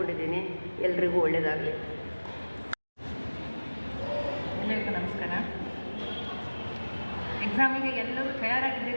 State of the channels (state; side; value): inverted; both; correlation -1.00